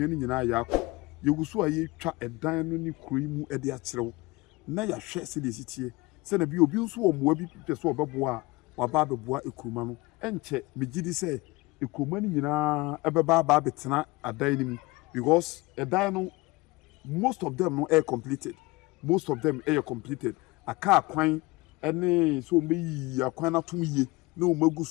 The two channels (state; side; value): quieter; right; 22.8 dB